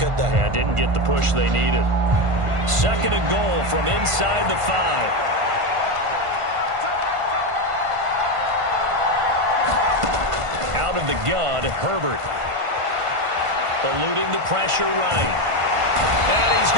they? Yeah, didn't get the push they needed. 2nd and goal from inside the 5. Out of the gun, Herbert. Eluding the pressure right. And he's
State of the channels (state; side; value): late; left; 1.5 ms